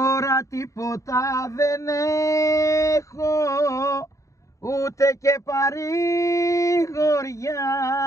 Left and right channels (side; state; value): right; late; 0.15 ms